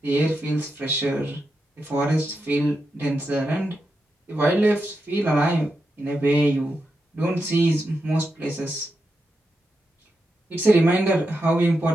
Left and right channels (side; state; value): both; normal; correlation 0.87